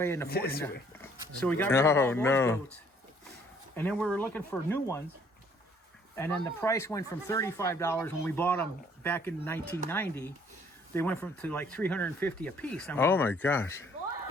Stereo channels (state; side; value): normal; both; correlation 0.61